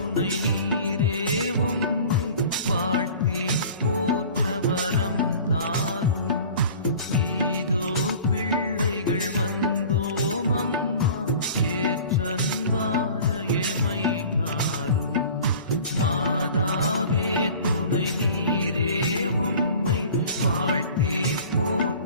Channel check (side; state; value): both; inverted; correlation -0.43